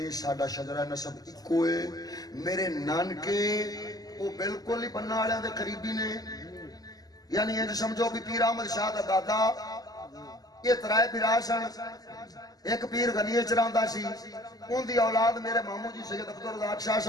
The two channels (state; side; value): late; right; 0.18 ms